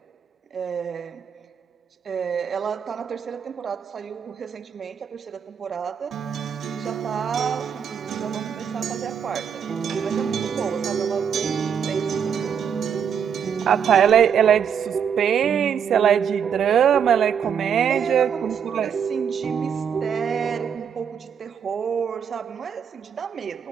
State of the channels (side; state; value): left; quieter; 7.6 dB